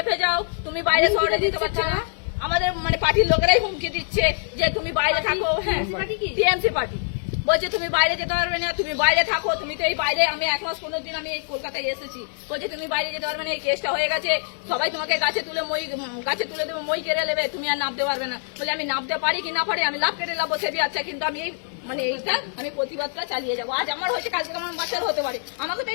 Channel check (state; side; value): silent; right; 62 dB below the other